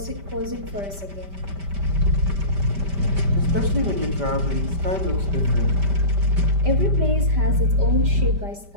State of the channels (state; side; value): late; left; 5.1 ms